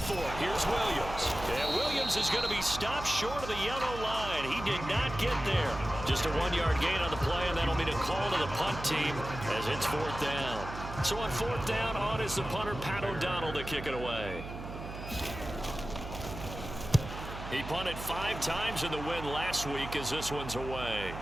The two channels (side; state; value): right; noise; hum, 9 dB below the sound